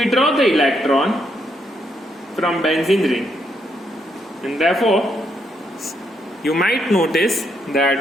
the electron from benzene ring. And therefore, you might notice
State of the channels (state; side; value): normal; both; correlation 0.76